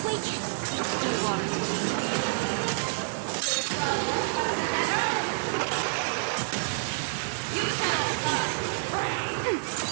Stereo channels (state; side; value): silent; left; digital silence